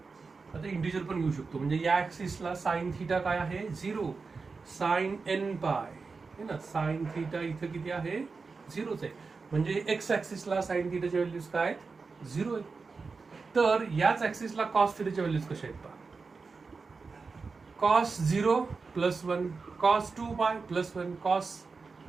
आता इंटिजर पण घेऊ शकतो, म्हणजे या ऍक्सिसला साइन थीटा काय आहे 0, साइन एन पाय है ना, साइन थीटा इथं किती आहे, 0च आहे. म्हणजे एक्स ऍक्सिसला साइन थीटाच्या व्हॅल्यूज काय आहेत, 0 आहेत. तर याच ऍक्सिसला कॉस थीटाच्या व्हॅल्यूज कशा आहेत पहा. कॉस 0 प्लस 1, कॉस 2 पाय प्लस 1, कॉस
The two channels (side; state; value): left; quieter; 4.5 dB